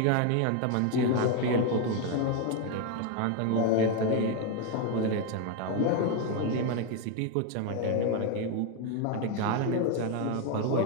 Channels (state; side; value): different; both; correlation 0.01